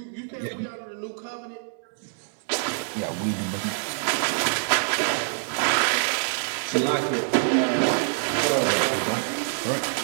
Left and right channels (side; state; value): left; silent; digital silence